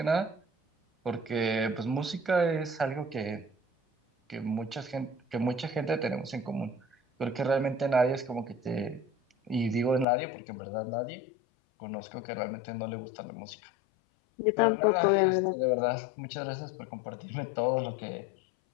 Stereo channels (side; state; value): right; drops out; at 10.1 s